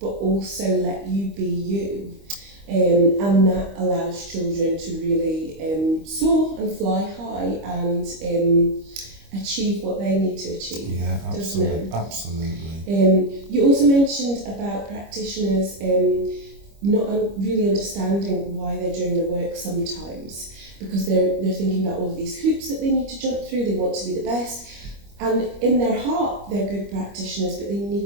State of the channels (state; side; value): late; left; 25 ms